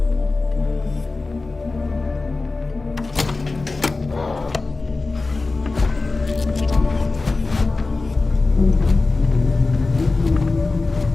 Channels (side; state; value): right; quieter; 3.6 dB